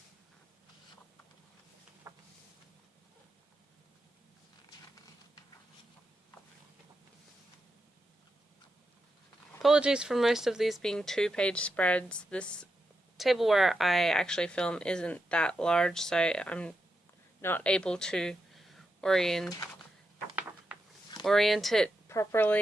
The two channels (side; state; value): both; normal; correlation 0.87